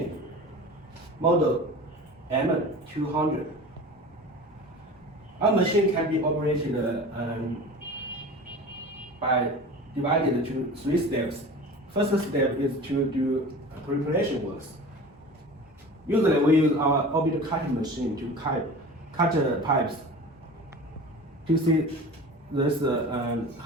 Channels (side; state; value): both; normal; correlation 0.36